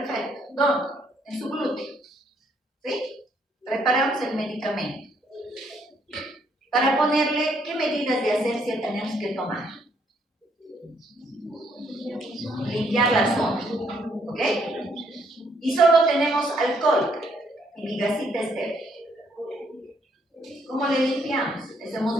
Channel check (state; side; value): normal; both; correlation 0.70